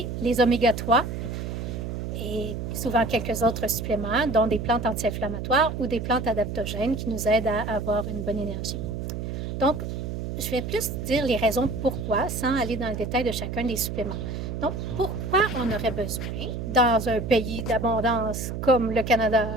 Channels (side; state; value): right; noise; hum, 5 dB below the sound